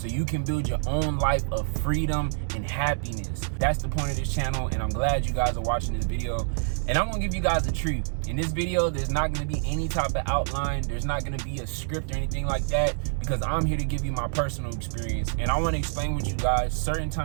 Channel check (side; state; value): left; silent; digital silence